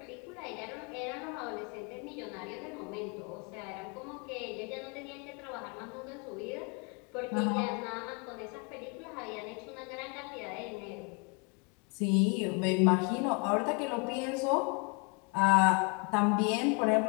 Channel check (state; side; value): quieter; right; 33.4 dB